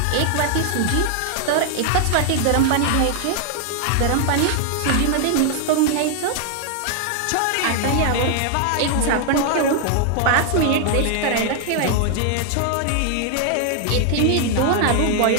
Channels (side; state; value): both; different; correlation 0.00